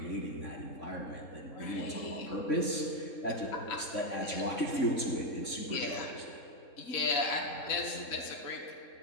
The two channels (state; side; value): late; right; 3.7 ms